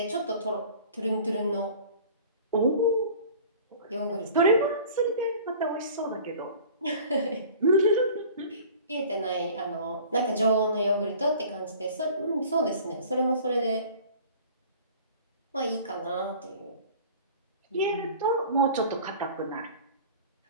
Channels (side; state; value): both; inverted; correlation -0.45